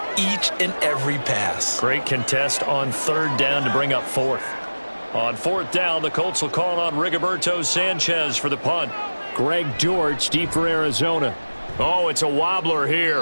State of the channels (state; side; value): inverted; both; correlation -1.00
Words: each and every pass. Great contest on 3rd down to bring up 4th. On 4th down, the Colts will call on Rigoberto Sanchez for the punt. Greg George, deep for Arizona. Oh, it's a wobbler